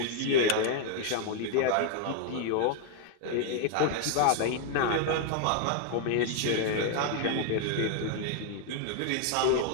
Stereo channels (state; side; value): different; both; correlation 0.00